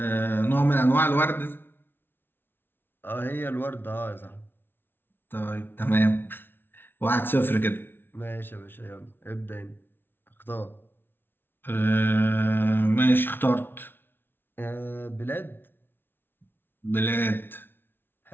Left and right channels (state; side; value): late; right; 0.10 ms